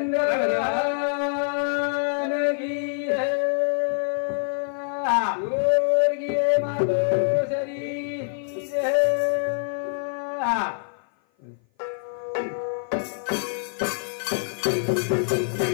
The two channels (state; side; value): silent; right; 55 dB below the other